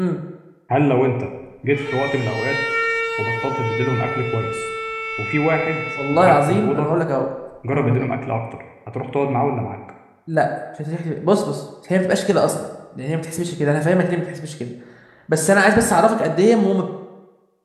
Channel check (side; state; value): both; identical; correlation 1.00